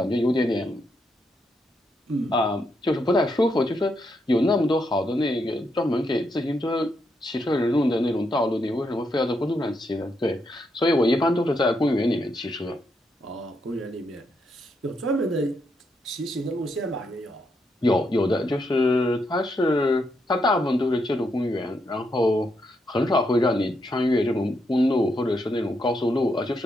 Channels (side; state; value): both; normal; correlation 0.80